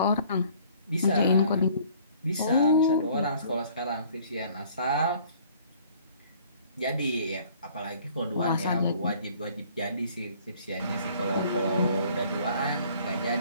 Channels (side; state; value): both; inverted; correlation -0.56